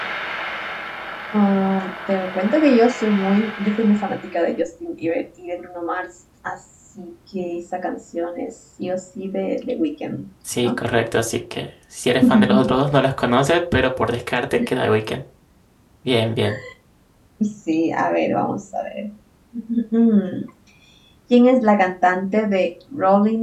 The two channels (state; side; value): identical; both; correlation 1.00